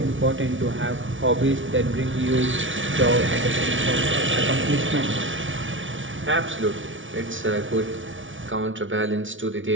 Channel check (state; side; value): late; left; 0.56 ms